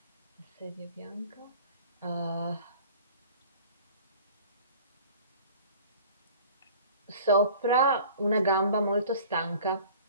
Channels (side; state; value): both; inverted; correlation -0.46